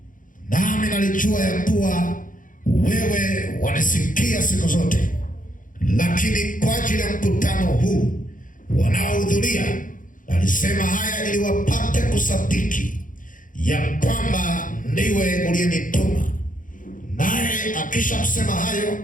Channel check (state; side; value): late; right; 0.39 ms